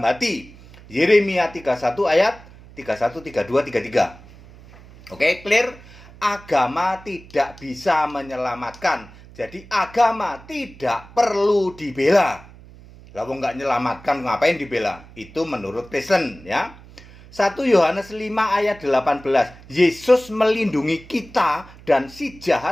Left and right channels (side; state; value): right; noise; hum, 21 dB below the sound